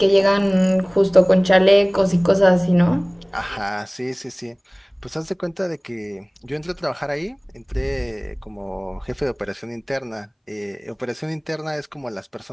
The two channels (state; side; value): identical; both; correlation 1.00